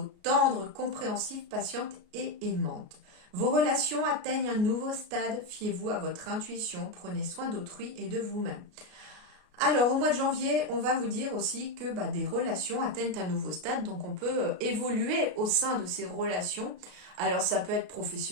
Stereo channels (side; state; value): left; late; 33 ms